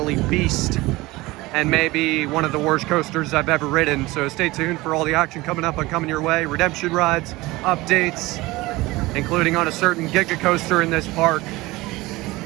beast, and maybe one of the worst coasters I've ever ridden. So stay tuned for all the action coming up and coming your way. Redemption rides, updates, including on a certain Giga coaster in this park.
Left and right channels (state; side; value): quieter; left; 20.5 dB